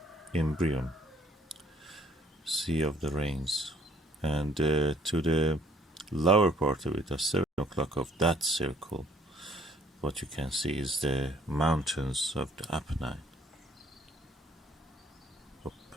Imbrium, Sea of the Rains, and to the lower part of it, at 7 o'clock of that circle, what you can see is the mountains of the Apennine.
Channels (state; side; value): normal; both; correlation 0.61